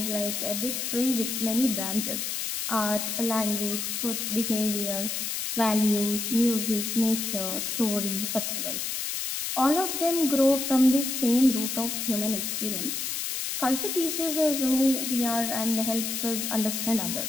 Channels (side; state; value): left; noise; hiss, 3 dB below the sound